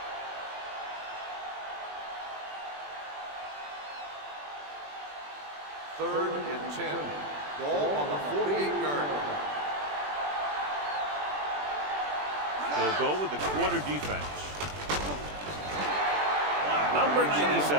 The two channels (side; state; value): left; late; 20 ms